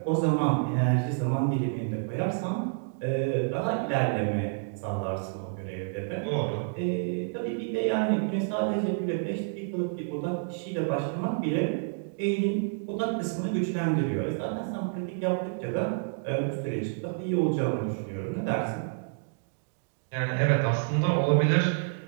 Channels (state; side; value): silent; left; digital silence